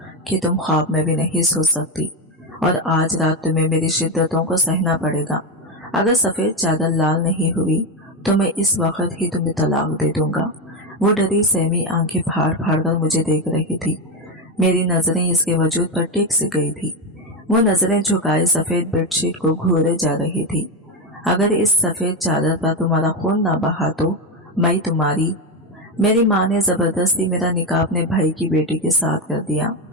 कि तुम ख्वाब में भी नहीं सो सकती, और आज रात तुम्हें मेरी शिद्दतों को सहना पड़ेगा। अगर सफ़ेद चादर लाल नहीं हुई तो मैं इस वक्त ही तुम्हें तलाक दे दूंगा। वो डरी सहमी आंखें फाड़ फाड़ कर मुझे देख रही थी। मेरी नजरें इसके वजूद पर टिक सी गई थी। वो नजरें झुकाए सफ़ेद बेडशीट को घूरे जा रही थी। अगर इस सफ़ेद चादर पर तुम्हारा खून ना बहा तो मैं तुम्हारी। मेरी माँ ने ज़बरदस्ती मेरा निकाह अपने भाई की बेटी के साथ कर दिया।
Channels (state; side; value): normal; both; correlation 0.11